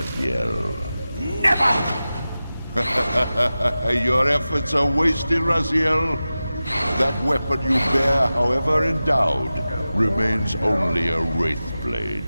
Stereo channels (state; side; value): inverted; both; correlation -0.95